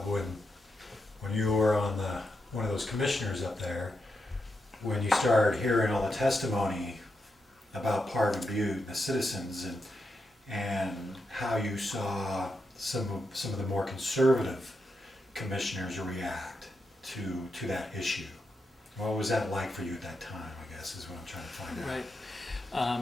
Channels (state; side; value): normal; both; correlation 0.85